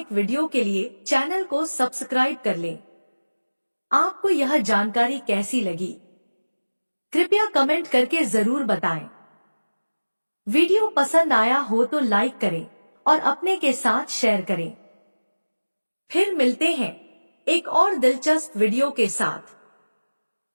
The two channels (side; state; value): both; inverted; correlation -1.00